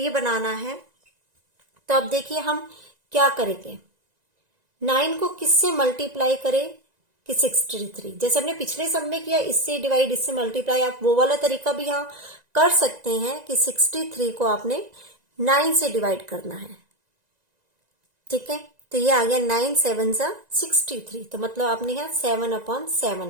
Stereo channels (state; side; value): late; left; 1.9 ms